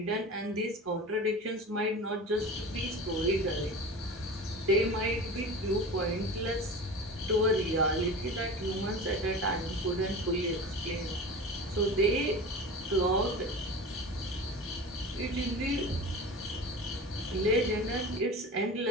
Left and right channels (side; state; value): both; normal; correlation 0.33